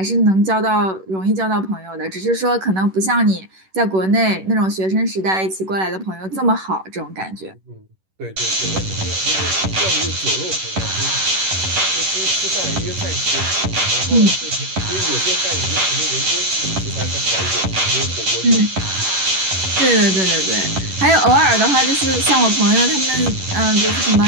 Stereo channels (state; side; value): late; left; 11 ms